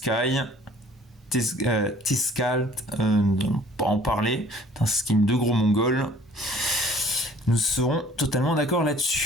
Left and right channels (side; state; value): both; normal; correlation 0.54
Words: Tiscalt, pas en parler, c'est un skin de gros mongol. Nous serons totalement d'accord